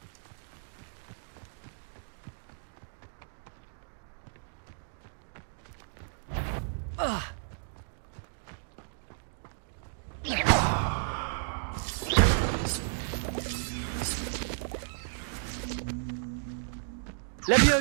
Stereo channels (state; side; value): silent; left; digital silence